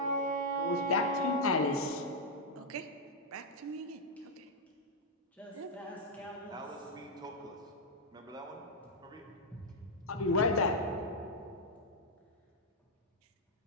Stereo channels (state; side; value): normal; both; correlation -0.03